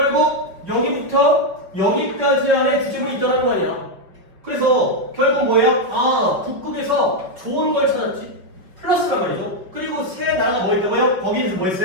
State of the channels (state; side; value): late; left; 5.2 ms